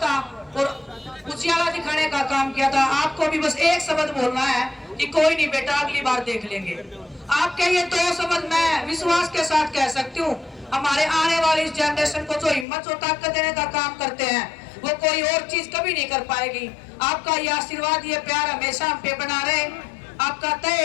और उजियाला दिखाने का काम किया था, आपको भी बस एक शब्द बोलना है कि कोई नहीं बेटा, अगली बार देख लेंगे। आपके ये 2 शब्द मैं विश्वास के साथ कह सकती हूँ, हमारे आने वाली इस जनरेशन को जो हिम्मत और ताकत देने का काम करते हैं वो कोई और चीज कभी नहीं कर पाएगी। आपका ये आशीर्वाद, ये प्यार हमेशा हम पे बना रहे। आपका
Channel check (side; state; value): right; drops out; at 12.7 s